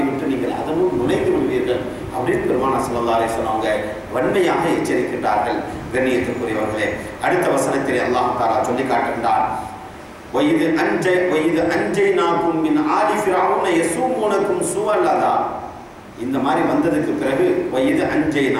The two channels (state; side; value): identical; both; correlation 1.00